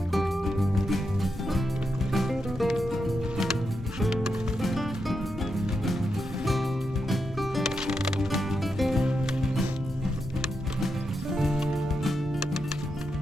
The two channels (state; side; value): normal; both; correlation 0.85